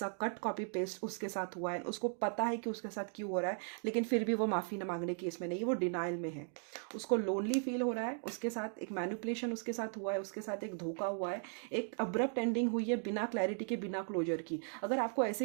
कट कॉपी पेस्ट उसके साथ हुआ है। उसको पता है कि उसके साथ क्यों हो रहा है, लेकिन फिर भी वो माफ़ी न मांगने की इसमें नहीं, वो डिनाइल में है। उसको लोनली फील हो रहा है, उसके साथ एक मैनिपुलेशन उसके साथ हुआ है, उसके साथ एक धोखा हुआ है, एक अब्रप्ट एंडिंग हुई है बिना क्लैरिटी के, बिना क्लोजर की। अगर आपको ऐसे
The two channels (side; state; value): left; silent; 53 dB below the other